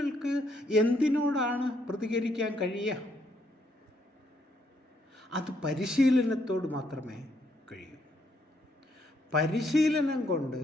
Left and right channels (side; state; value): both; normal; correlation 0.73